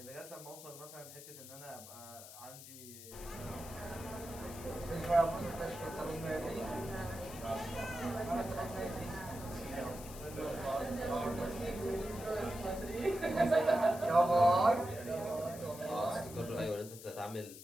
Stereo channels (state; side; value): noise; left; hiss, 14 dB below the sound